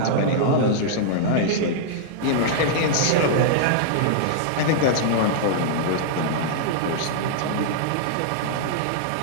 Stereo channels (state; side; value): different; both; correlation -0.01